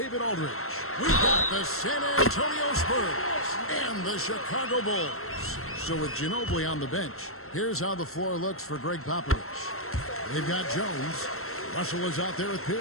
Aldridge. We've got the San Antonio Spurs and the Chicago Bulls. So with Ginobili on the bench, here's how the floor looks for Greg Popovich. They've got Jones. Russell is out there with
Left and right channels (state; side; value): late; right; 0.62 ms